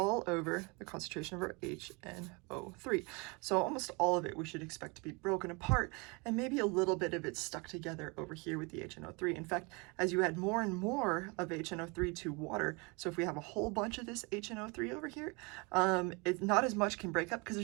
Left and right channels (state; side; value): quieter; left; 29.1 dB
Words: over the concentration of our HNO3. So almost all of it we should expect to be broken apart, and maybe a little bit of it stuck together over here with the HNO3. In fact, as you add more and more of HNO3 to water, so if we have a whole bunch of this HNO3 over here, it's not as much can break up because